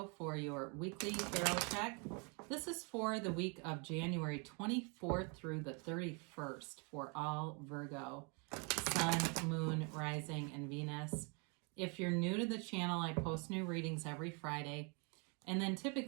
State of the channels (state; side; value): quieter; left; 34.1 dB